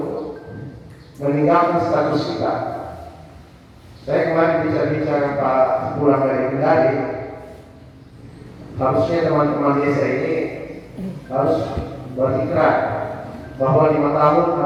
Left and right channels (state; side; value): identical; both; correlation 1.00